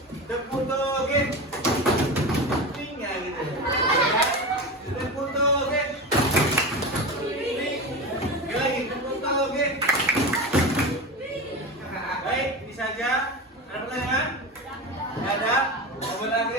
Tepuk toge, tinggal gitu. Tepuk toge, lagi tepuk toge. Baik, ini saja. Ada pertanyaan? Tidak ada. Wabillahi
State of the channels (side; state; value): both; normal; correlation 0.24